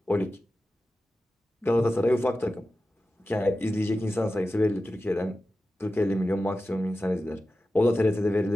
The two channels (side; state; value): both; normal; correlation 0.94